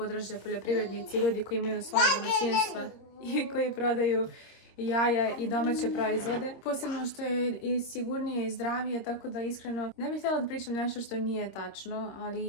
poljoprivrednici i ljudi koji imaju svoje domaćinstva i koji prodaju jaja i domaće proizvode. Posebno što je i sigurnije i zdravije, tako da iskreno ne bih htjela da pričam nešto što nije tačno,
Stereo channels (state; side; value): late; right; 26 ms